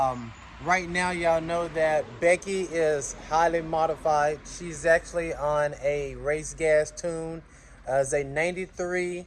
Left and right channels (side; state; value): both; identical; correlation 1.00